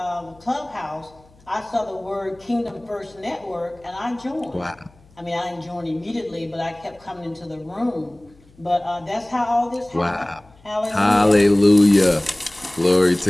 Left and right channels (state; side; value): noise; left; hum, 28 dB below the sound